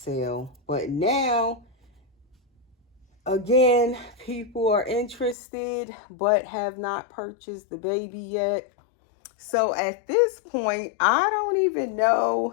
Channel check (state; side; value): drops out; right; at 5.4 s